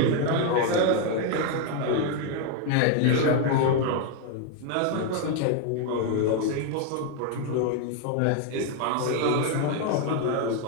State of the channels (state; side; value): different; both; correlation 0.01